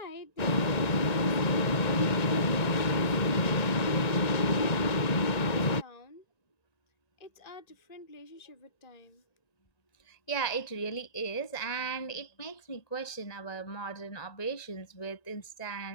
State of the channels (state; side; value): late; right; 1.9 ms